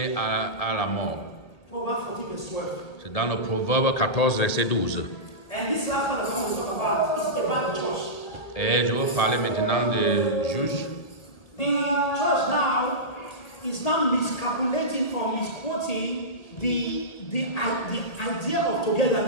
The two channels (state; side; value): late; right; 2.0 ms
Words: à la mort. Proverbs 14 verse 12. C'est dans le Proverbe 14, verset 12. And this last one that I want to talk about is about the church. Et je vais parler maintenant des juges. The church now is now miscalculating or misquoting the idea of